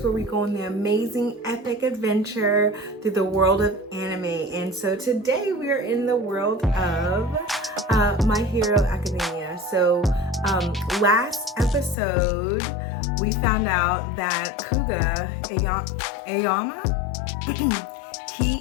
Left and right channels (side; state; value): right; drops out; at 12.0 s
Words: where we go on the amazing epic adventure through the world of anime. And so today we are in the world of My Hero Academia. So last episode we found out that Aoyama